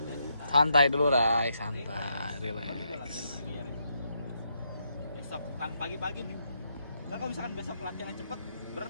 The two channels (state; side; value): inverted; both; correlation -0.79